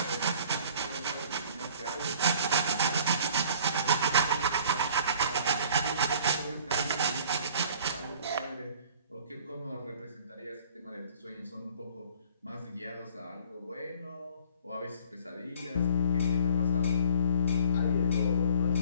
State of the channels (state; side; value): inverted; both; correlation -0.52